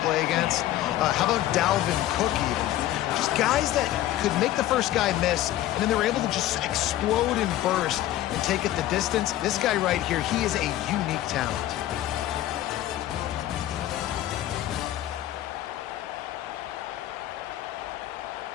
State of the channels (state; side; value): quieter; right; 13.8 dB